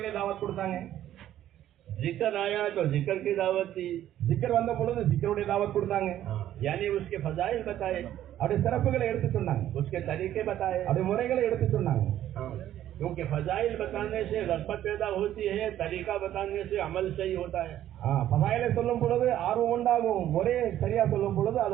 தாவத் கொடுத்தாங்க. जिक्र आया तो जिक्र की दावत दी, ஜிக்கர் வந்த பொழுது ஜிக்கருடைய தாவத் கொடுத்தாங்க. यानी उसके फजाइल बताए, அவருடைய சிறப்புகளை எடுத்து சொன்னாங்க, उसके तरीके बताए. அவருடைய முறைகளை எடுத்து சொன்னாங்க. क्योंकि फजाइल बताने से रग़बत पैदा होती है, तरीका बताने से अमल सही होता है. ஃபதாயிலை சொல்லும் பொழுது ஆர்வம் உண்டாகும், முறையை சரியா சொல்லும் பொழுது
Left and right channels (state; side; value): quieter; left; 12.1 dB